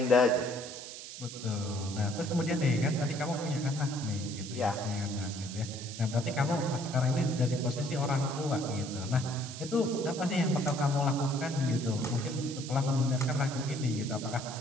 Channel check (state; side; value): noise; right; hiss, 11 dB below the sound